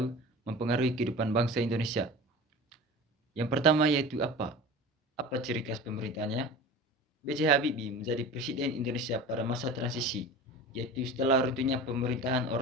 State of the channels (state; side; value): normal; both; correlation 0.35